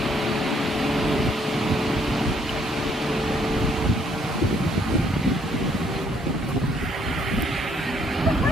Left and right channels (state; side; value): normal; both; correlation 0.67